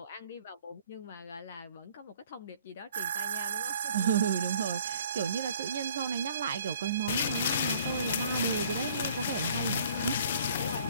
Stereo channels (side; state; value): both; inverted; correlation -0.56